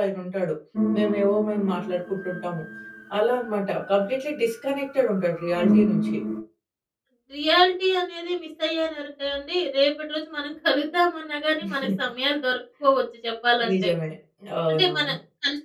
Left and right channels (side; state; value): both; identical; correlation 1.00